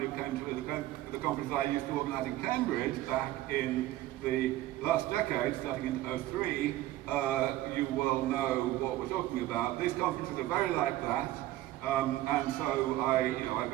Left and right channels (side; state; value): left; quieter; 15.5 dB